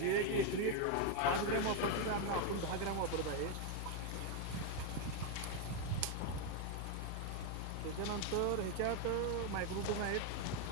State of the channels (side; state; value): both; different; correlation 0.01